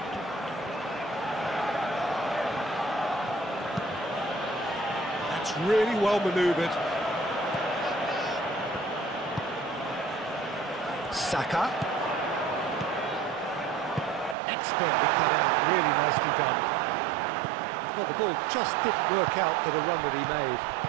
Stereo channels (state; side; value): drops out; left; at 14.4 s